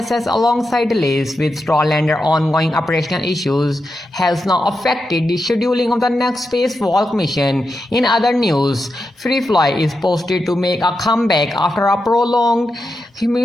alongside delays with Starliner ongoing operational issues has now affected the scheduling of the next spacewalk mission. In other news, FireFly is posted to make a comeback after a prolonged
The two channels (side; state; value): both; normal; correlation 0.88